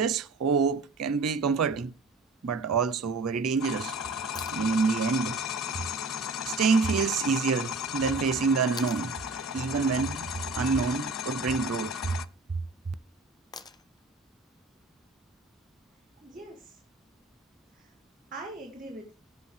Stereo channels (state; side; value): quieter; left; 3.3 dB